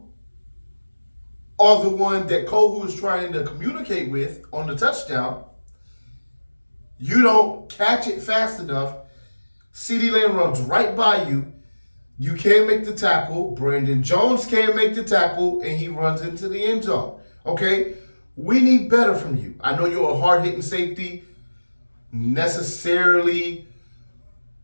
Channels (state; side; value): inverted; both; correlation -1.00